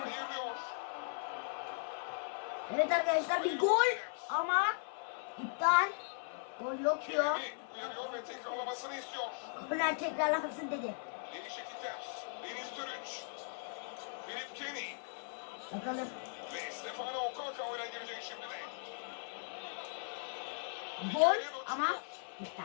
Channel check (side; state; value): right; silent; 52 dB below the other